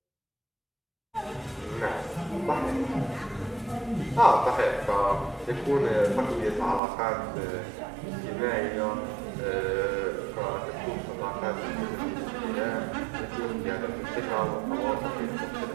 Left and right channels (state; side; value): drops out; left; at 6.8 s